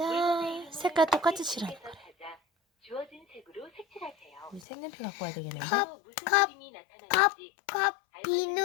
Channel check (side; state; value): right; drops out; at 4.7 s